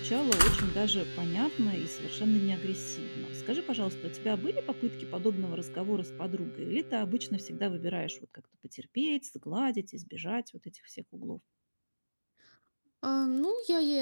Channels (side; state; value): both; inverted; correlation -1.00